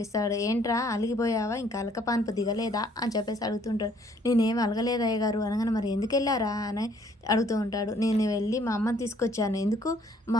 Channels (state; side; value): normal; both; correlation 0.62